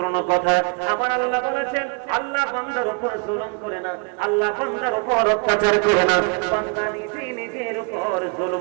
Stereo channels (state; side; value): quieter; left; 35.5 dB